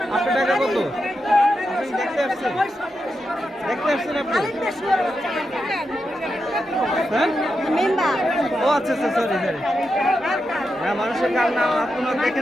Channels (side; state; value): both; normal; correlation 0.87